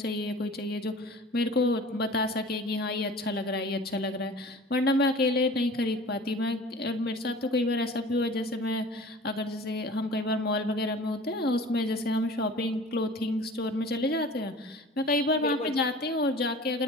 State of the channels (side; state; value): both; normal; correlation 0.43